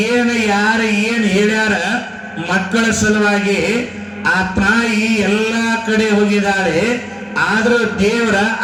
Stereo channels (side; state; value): both; identical; correlation 1.00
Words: ಯಾರು ಏನ್ ಹೇಳ್ಯಾರ ಮಕ್ಕಳ ಸಲುವಾಗಿ ಆ ತಾಯಿ ಎಲ್ಲಾ ಕಡೆ ಹೋಗಿದ್ದಾಳೆ. ಆದ್ರೂ ದೇವರ